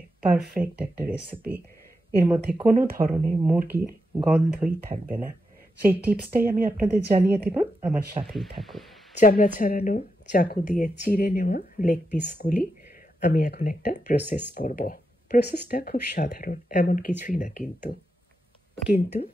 পারফেক্ট একটা রেসিপি। এর মধ্যে কোনো ধরনের মুরগির গন্ধই থাকবে না। সেই টিপসটাই আমি আপনাদের জানিয়ে দেব, আমার সাথেই থাকুন। চামড়া ছাড়ানো চাকু দিয়ে চিড়ে নেওয়া লেগ পিসগুলি আমি এখন একটা প্রসেস করব। প্রসেসটা খুব সাধারণ, এমন কিছুই না, কিন্তু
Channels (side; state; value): both; normal; correlation 0.86